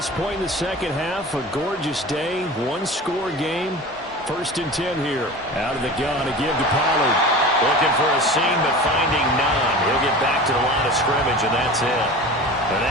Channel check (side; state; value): both; normal; correlation 0.35